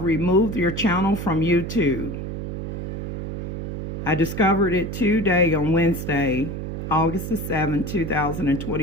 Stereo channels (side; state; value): right; noise; hum, 5 dB below the sound